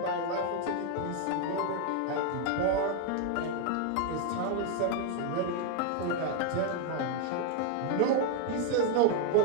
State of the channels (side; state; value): both; different; correlation 0.00